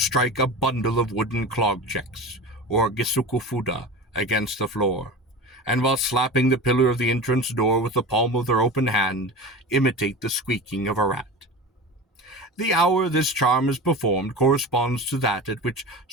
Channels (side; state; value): both; normal; correlation 0.31